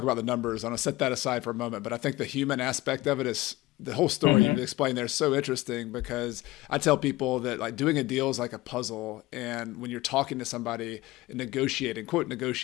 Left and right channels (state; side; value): quieter; right; 19.0 dB